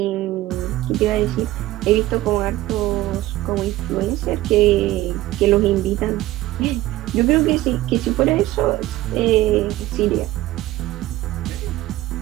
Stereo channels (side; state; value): left; quieter; 16.3 dB